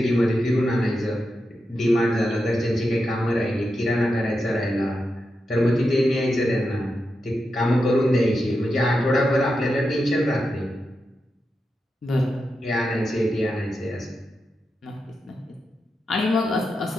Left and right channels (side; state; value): both; normal; correlation 0.88